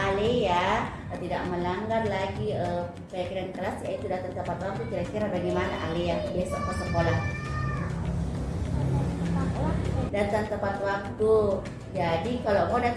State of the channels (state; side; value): identical; both; correlation 1.00